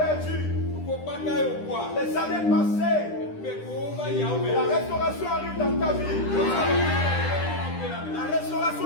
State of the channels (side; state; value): right; late; 9.9 ms